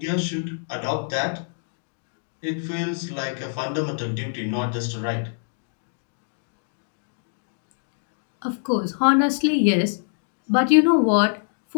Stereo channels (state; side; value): silent; right; digital silence